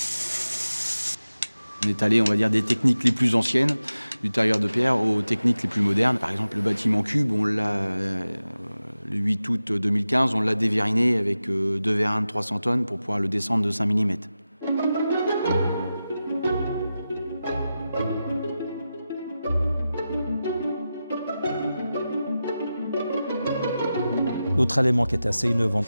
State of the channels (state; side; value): inverted; both; correlation -0.93